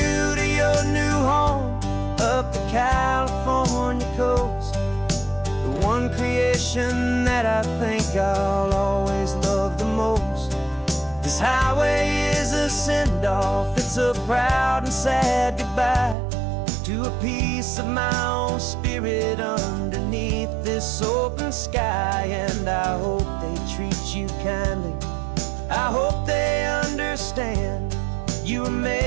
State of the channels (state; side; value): drops out; left; at 16.2 s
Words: to your new home up the California coast, the one creation that I think I'll always love the most. This highway is a send-off, it's a proud and sad goodbye to a piece of my own spirit underneath this open sky. And I hope they treat you kindly, I hope they understand you were